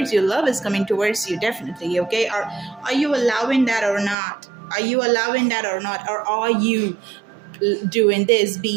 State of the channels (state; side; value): drops out; left; at 4.2 s